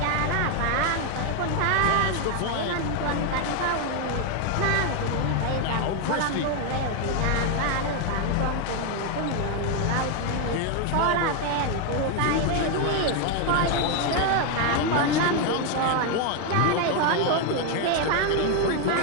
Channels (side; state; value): both; different; correlation 0.01